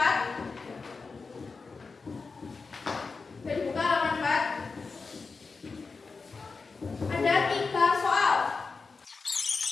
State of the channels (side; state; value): right; quieter; 4.5 dB